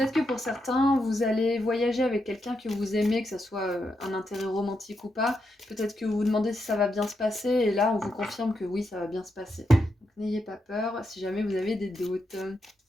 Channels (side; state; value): both; normal; correlation 0.83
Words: que pour certains, vous allez voyager avec quelqu'un que vous aimez, que ce soit un intérêt romantique ou pas. Peut-être que vous vous demandez si ça va bien se passer, et là, on vous confirme que oui, ça va bien se passer. Donc n'ayez pas peur si jamais vous avez des doutes.